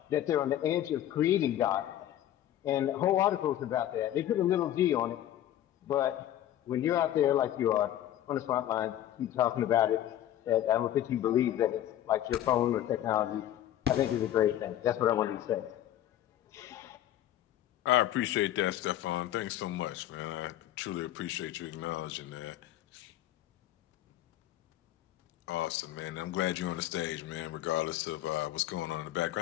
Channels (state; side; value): quieter; right; 12.3 dB